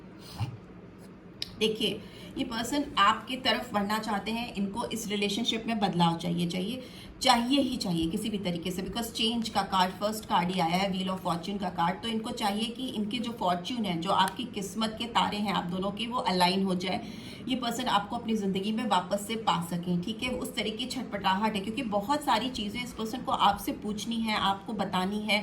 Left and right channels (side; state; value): both; identical; correlation 1.00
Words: देखिए, ये पर्सन आपकी तरफ बढ़ना चाहते हैं, इनको इस रिलेशनशिप में बदलाव चाहिए ही चाहिए किसी भी तरीके से, बिकॉज चेंज का कार्ड, फर्स्ट कार्ड ही आया है, व्हील ऑफ फॉर्च्यून का कार्ड। तो इनको चाहिए कि इनके जो फॉर्च्यून है, जो आपकी किस्मत के तारे हैं आप दोनों के, वो अलाइन हो जाए, ये पर्सन आपको अपनी ज़िंदगी में वापस से पा सकें, ठीक है। उस तरह की छटपटाहट है, क्योंकि बहुत सारी चीज़ें इस पर्सन को आपसे पूछनी है, आपको बतानी